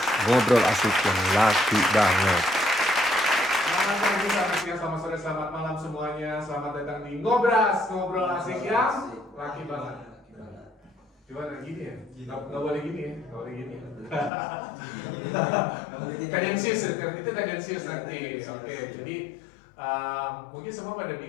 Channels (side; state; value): right; drops out; at 14.3 s